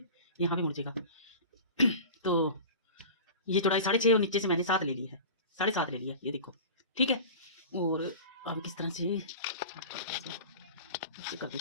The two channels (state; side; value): inverted; both; correlation -0.35